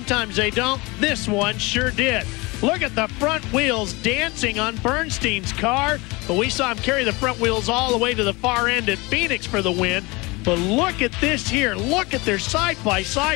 they don't. This one sure did. Look at the front wheels dancing on Bernstein's car, but we saw him carry the front wheels all the way to the far end at Phoenix for the win. But look at this here. Look at their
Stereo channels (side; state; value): right; quieter; 24.8 dB